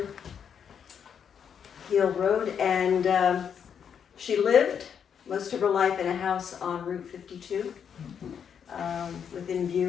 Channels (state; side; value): quieter; right; 7.7 dB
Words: and she lived most of her life in a house on Route 52, within